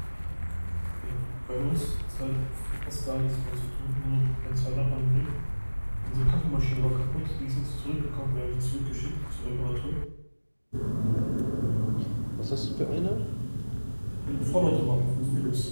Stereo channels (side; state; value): both; inverted; correlation -1.00